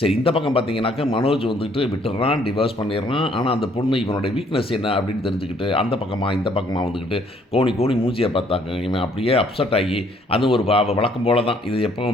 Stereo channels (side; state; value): both; normal; correlation 0.64